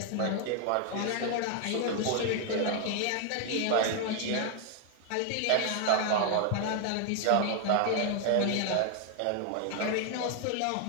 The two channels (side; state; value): both; different; correlation 0.00